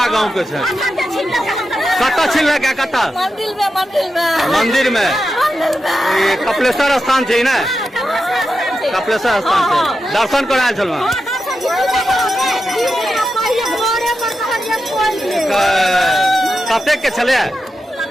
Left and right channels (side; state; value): both; normal; correlation 0.89